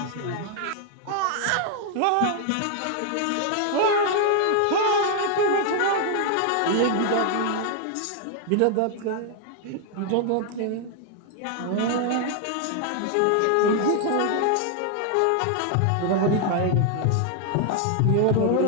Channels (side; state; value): both; different; correlation 0.00